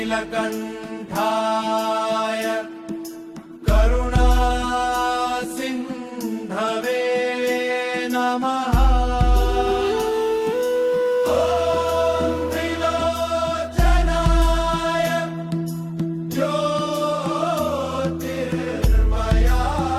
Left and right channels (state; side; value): identical; both; correlation 1.00